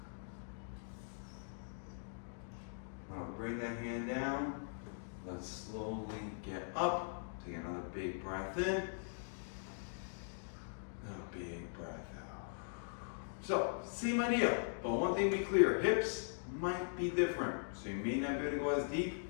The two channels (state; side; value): silent; right; digital silence